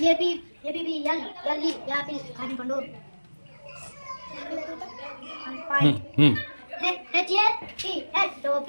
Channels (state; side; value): inverted; both; correlation -1.00